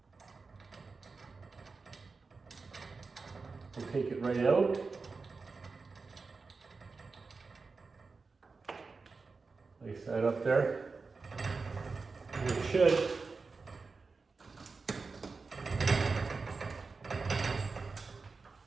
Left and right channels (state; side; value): quieter; left; 4.3 dB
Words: We'll take it right out. Place that up there. And it should.